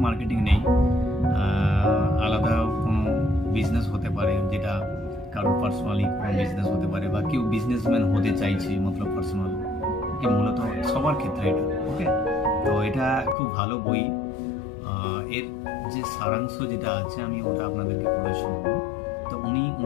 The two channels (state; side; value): drops out; right; at 13.4 s